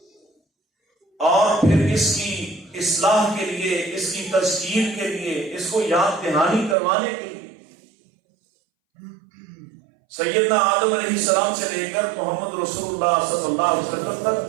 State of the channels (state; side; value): drops out; left; at 6.8 s